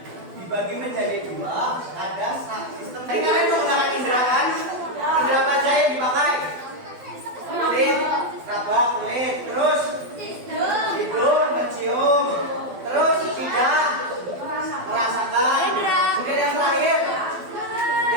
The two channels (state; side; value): late; left; 12 ms